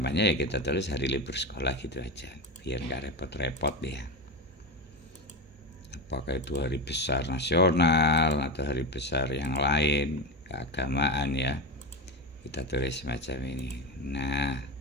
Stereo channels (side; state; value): both; normal; correlation 0.18